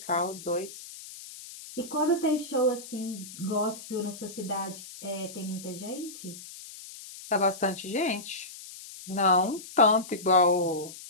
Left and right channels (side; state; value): left; noise; hiss, 14 dB below the sound